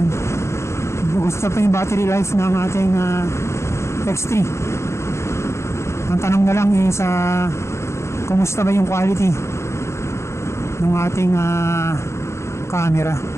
Gusto pa yung battery life ng ating X3. Ang tanong na lang is kumusta ba yung quality ng ating camera.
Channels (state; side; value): late; right; 0.13 ms